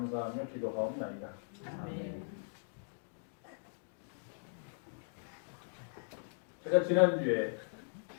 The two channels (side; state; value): right; silent; digital silence